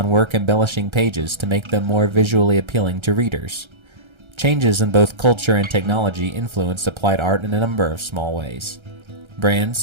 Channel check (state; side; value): late; left; 1.3 ms